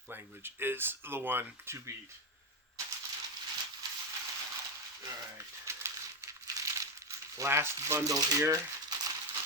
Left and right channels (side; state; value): both; normal; correlation 0.09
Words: language is the one to beat. Alright. Last bundle here.